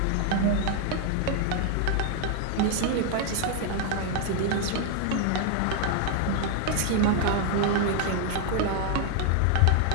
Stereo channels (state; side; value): different; both; correlation 0.00